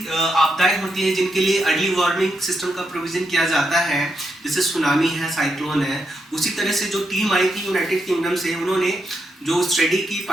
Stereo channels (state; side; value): normal; both; correlation 0.82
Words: आपदाएं होती हैं जिनके लिए early warning system का provision किया जाता है, जैसे सुनामी है, साइक्लोन है। उसी तरह से जो टीम आई थी यूनाइटेड किंगडम से, उन्होंने जो स्टडी की